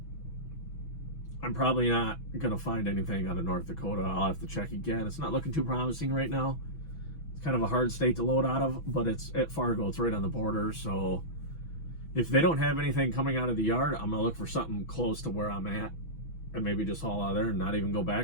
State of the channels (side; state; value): right; late; 6.1 ms